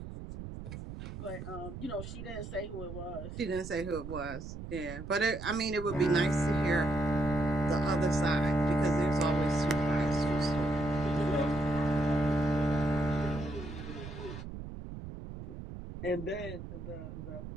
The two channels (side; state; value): right; noise; rumble, 10 dB below the sound